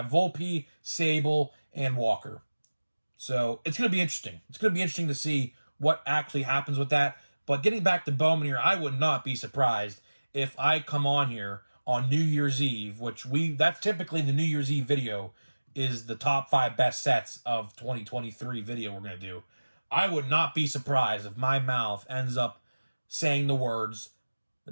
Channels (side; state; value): both; inverted; correlation -1.00